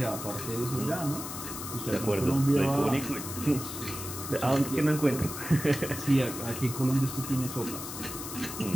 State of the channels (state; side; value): noise; left; hiss, 8 dB below the sound